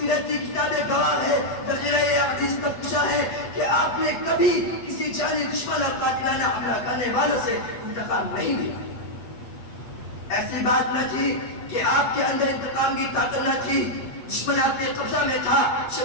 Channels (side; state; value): right; late; 8.4 ms